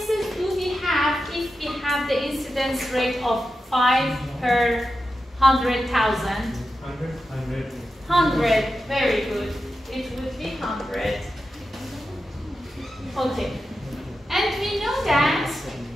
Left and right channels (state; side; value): normal; both; correlation 0.90